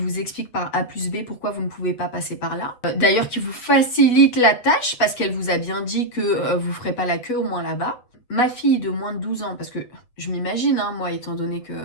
explique par A plus B pourquoi vous ne pouvez pas passer par là. D'ailleurs, qui vous facilite la tâche parce qu'elle vous a bien dit que vous ferez pas la queue au moins là-bas. Ma fille de moins de 12 ans, parce que je m'imagine, hein, moi, étant donné que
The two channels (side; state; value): right; late; 8.1 ms